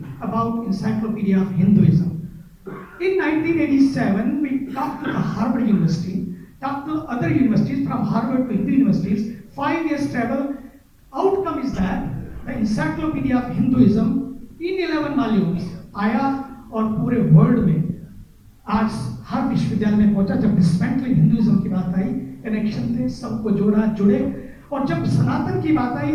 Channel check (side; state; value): both; identical; correlation 1.00